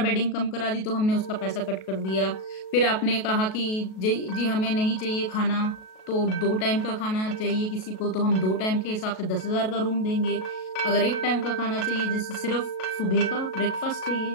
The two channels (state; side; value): late; right; 37 ms